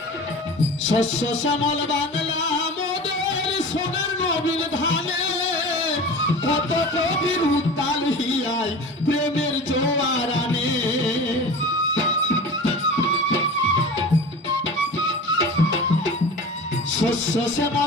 শস্য শ্যামল বাংলা মোদের সোনার নবীন ধানে, কত কবির উত্তাল হিয়ায় প্রেমের জোয়ার আনে। শস্য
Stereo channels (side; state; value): both; normal; correlation 0.35